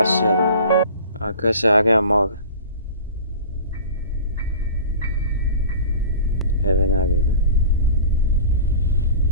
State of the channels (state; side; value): inverted; both; correlation -0.39